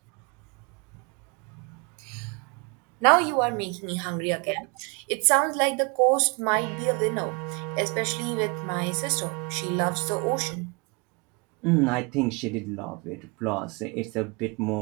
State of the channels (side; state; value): left; quieter; 30.9 dB